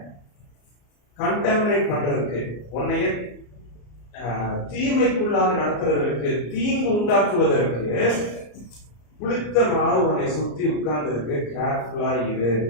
கண்டாமினேட் பண்றதுக்கு, உன்னைய தீமைக்குள்ளாக நடத்துறதற்கு, தீங்கு உண்டாக்குவதற்கு புளித்த மாவு உன்னை சுத்தி உட்கார்ந்து இருக்கு. கேர்ஃபுல்லா இரு.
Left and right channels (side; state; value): right; late; 34 ms